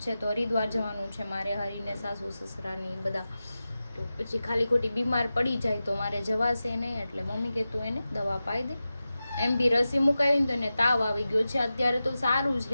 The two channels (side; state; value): both; inverted; correlation -0.94